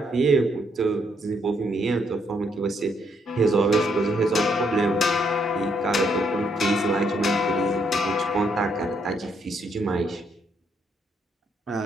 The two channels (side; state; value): both; normal; correlation 0.74